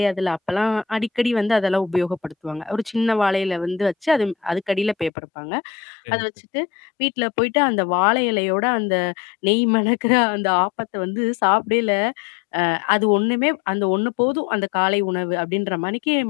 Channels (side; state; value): right; drops out; at 5.1 s